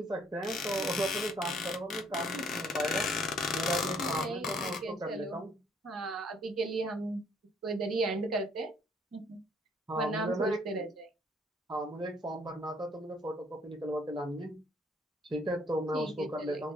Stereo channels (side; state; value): both; normal; correlation 0.62